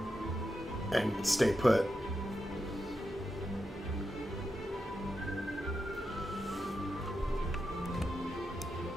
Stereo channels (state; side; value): normal; both; correlation 0.87